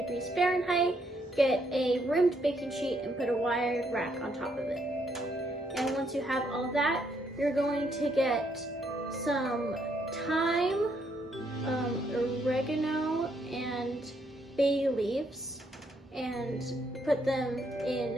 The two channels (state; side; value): normal; both; correlation 0.73